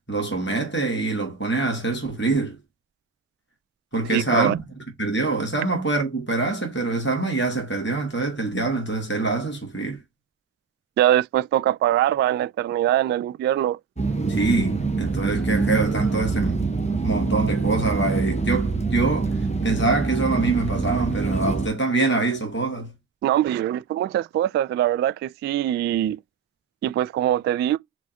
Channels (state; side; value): quieter; left; 5.0 dB